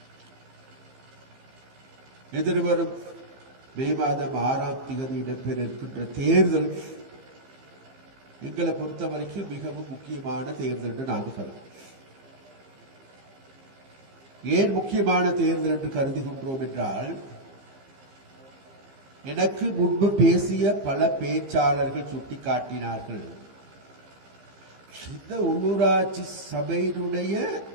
எதிர்வரும் மே மாதம் 6ஆம் தேதி இடம்பெற இருக்கின்ற தேர்தல் எங்களை பொறுத்த வரைக்கும் மிகவும் முக்கியமான தேர்தல் என்று நாங்கள் கருதுகிறோம். ஏன் முக்கியமான தேர்தல் என்று கருதுகின்றோம் என்றால், எனக்கு முன்பு பேசிய பல பேச்சாளர்கள் சுட்டிக்காட்டினார்கள், இந்த உள்ளூராட்சி சபையினுடைய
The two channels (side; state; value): left; late; 15 ms